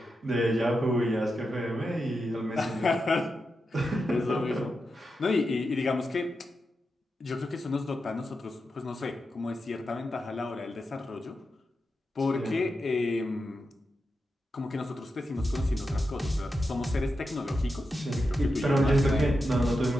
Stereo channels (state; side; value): normal; both; correlation 0.88